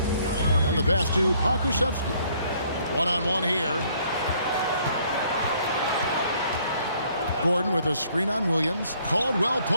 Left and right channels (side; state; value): both; inverted; correlation -0.64